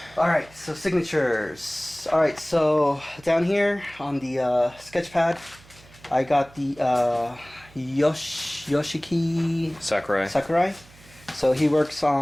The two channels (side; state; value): right; noise; hum, 24 dB below the sound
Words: Alright, so signatures. Alright, so down here on the sketch pad, I got the Yoshiki Sakurai. So he works